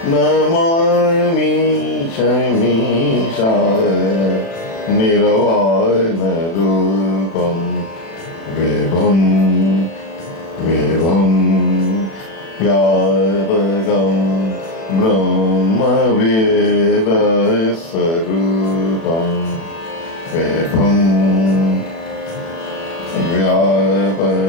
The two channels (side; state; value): right; late; 36 ms